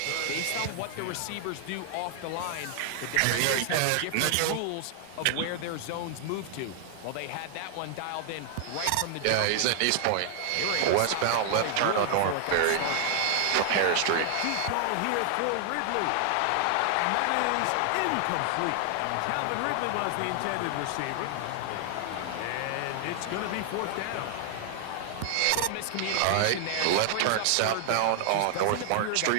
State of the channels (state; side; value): different; both; correlation 0.00